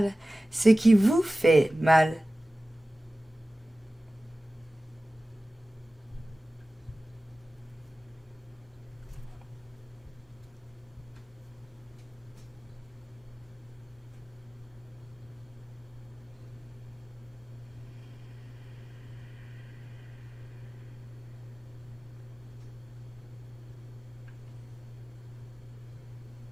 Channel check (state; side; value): normal; both; correlation 0.97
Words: ce qui vous fait mal.